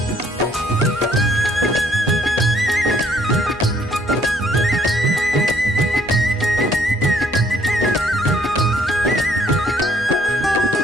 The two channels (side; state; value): left; noise; hum, 23 dB below the sound